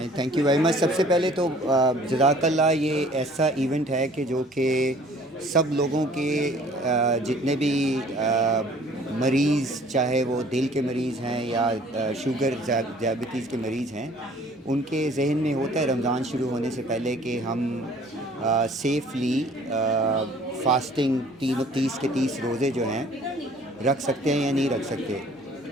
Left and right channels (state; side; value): normal; both; correlation 0.53